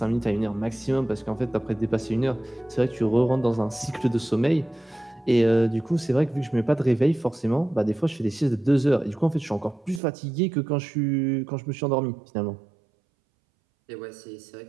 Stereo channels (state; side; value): drops out; left; at 10.0 s